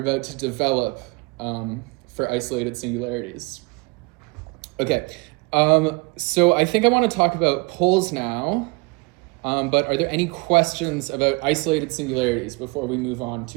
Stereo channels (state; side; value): quieter; left; 27.5 dB